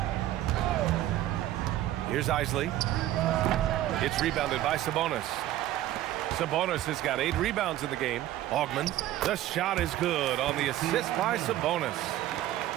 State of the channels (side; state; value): left; quieter; 13.8 dB